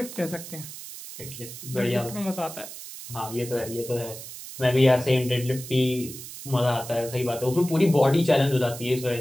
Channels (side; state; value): right; noise; hiss, 12 dB below the sound